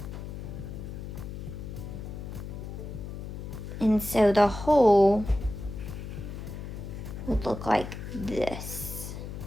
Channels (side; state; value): left; noise; hum, 8 dB below the sound